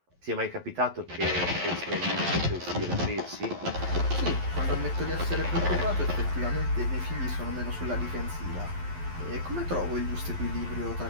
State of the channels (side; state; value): left; late; 11 ms